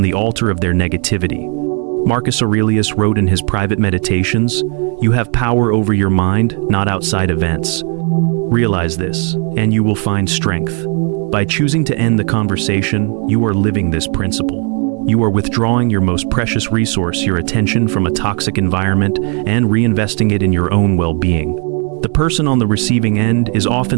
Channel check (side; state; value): left; quieter; 37.8 dB